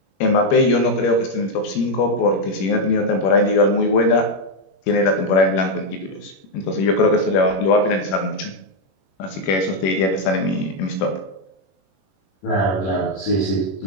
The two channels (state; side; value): late; right; 21 ms